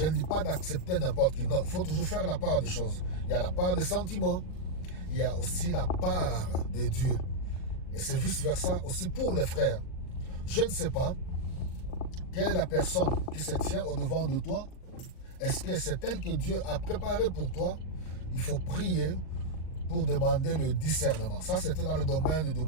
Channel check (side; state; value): right; late; 39 ms